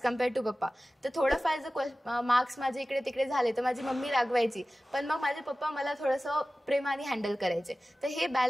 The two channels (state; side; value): normal; both; correlation 0.96